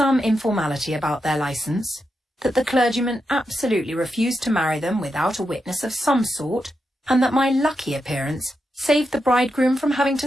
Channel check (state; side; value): normal; both; correlation 0.86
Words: informality about their licence, that the clergyman absolutely refused to marry them without a witness of some sort, and that my lucky appearance saved the bridegroom from having